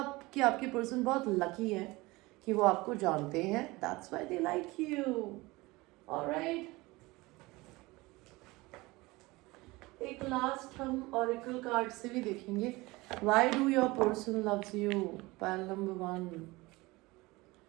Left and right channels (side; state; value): left; quieter; 21.9 dB